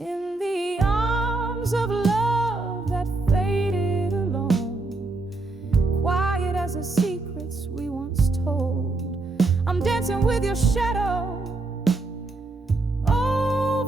the arms of love that faded alone, quiet as the secrets we once told, I'm dancing with your shadow,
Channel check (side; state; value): left; quieter; 3.3 dB